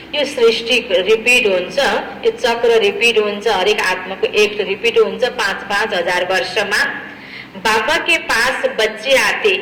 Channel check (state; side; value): identical; both; correlation 1.00